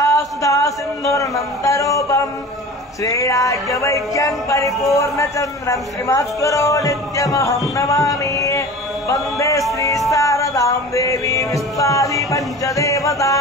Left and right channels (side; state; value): both; normal; correlation 0.37